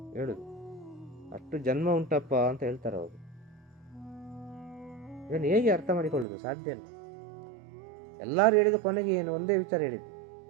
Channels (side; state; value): left; drops out; at 6.2 s